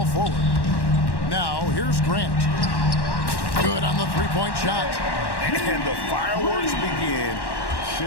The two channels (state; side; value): late; right; 1.1 ms